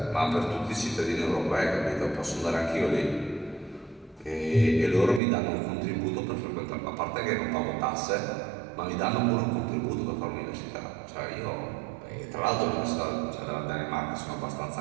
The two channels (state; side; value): drops out; left; at 5.2 s